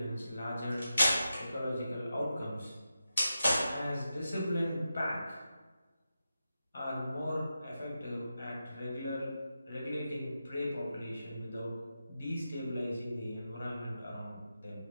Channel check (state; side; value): inverted; both; correlation -0.89